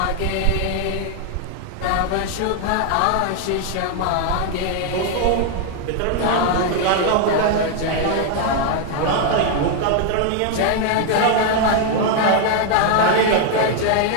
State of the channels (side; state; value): both; different; correlation 0.00